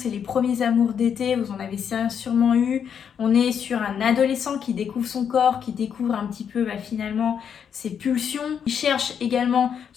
les premiers amours d'été, vous en avez sûrement eu. On est sur un adolescent qui découvre son corps, qui découvre un petit peu finalement ses pulsions. Il cherche également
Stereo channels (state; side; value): quieter; right; 7.7 dB